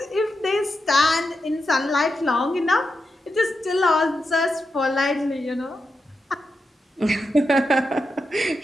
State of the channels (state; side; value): normal; both; correlation 0.87